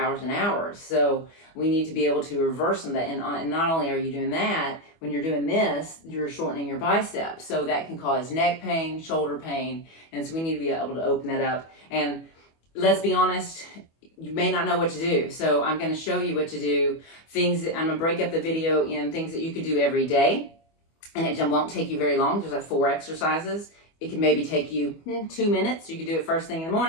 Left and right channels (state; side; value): late; right; 25 ms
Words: and hours. So we need to be able to reverse some of that. And not only are you doing that, when you're doing this, you're shortening your biceps. So that can cause neck pain, shoulder pain. And so we need to be able to open that up. And let's be honest, you may not know what to do. So I'm going to show you what to do. Things that I'm going to break up the video in things that you could do every day. And it won't take you very long. There's like 4 exercises. It can maybe take you 2 minutes. You can do it first thing in the